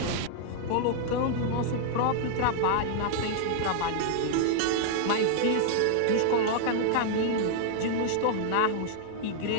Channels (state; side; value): different; both; correlation -0.01